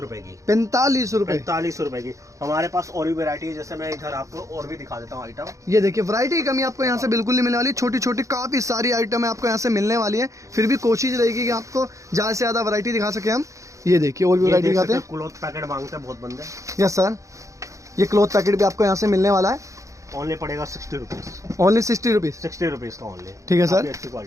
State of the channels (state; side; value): late; left; 0.15 ms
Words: की। 45 रुपए। 45 रुपए की। हमारे पास और भी वैरायटी है, जैसे मैं इधर आपको और भी दिखा देता हूँ आइटम। ये देखिए वैरायटी की कमी आपको यहाँ से बिल्कुल नहीं मिलने वाली। छोटी छोटी काफी सारी आइटम है आपको यहाँ से मिलने वाली है। फिर भी कोशिश रहेगी कि आपको ज्यादा से ज्यादा वैरायटी दिखा सके हम। ये देखिए और भी वैरायटी दिखाते हैं। क्लॉथ पैकेट मांगते हैं बहुत बंदे। Yes sir. ये क्लॉथ पैकेट भी आपको यहाँ से मिलने वाला है। ओनली पड़ेगा 60 रुपीज। Only 60 rupees. 60 रुपीज का ओनली। ठीक है सर। अच्छी